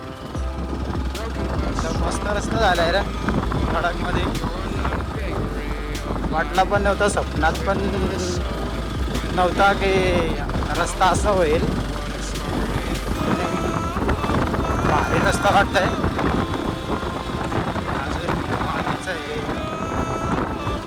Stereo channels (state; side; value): identical; both; correlation 1.00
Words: मस्त रस्ता झालाय रे कडकमध्ये. वाटला पण नव्हता, स्वप्नात पण नव्हता की रस्ता असा होईल. भारी रस्ता वाटतंय.